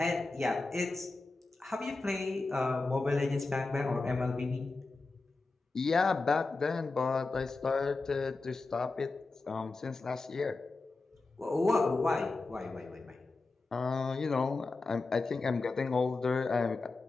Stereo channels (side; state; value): right; quieter; 3.6 dB